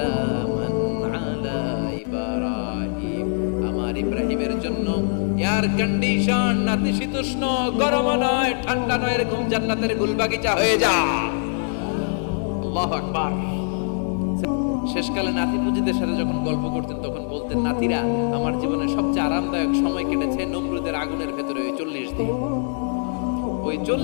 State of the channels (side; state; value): right; silent; 63 dB below the other